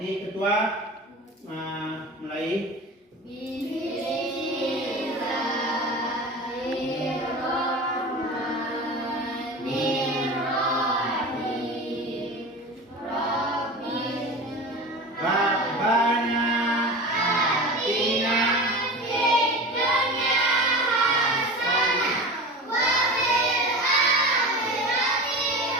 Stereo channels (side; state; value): both; normal; correlation 0.32